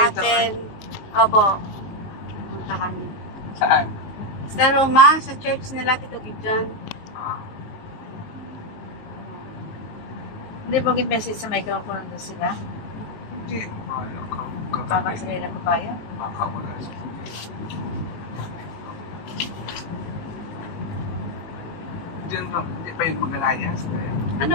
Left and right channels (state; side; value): late; right; 19 ms